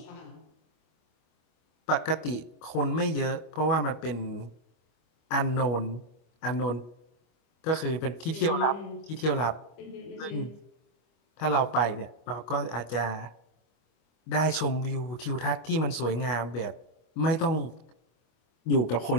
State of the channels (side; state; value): right; late; 25 ms